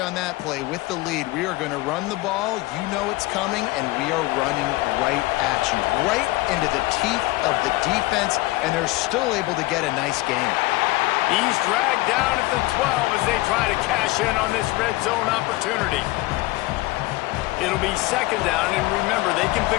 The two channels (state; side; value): quieter; right; 20.1 dB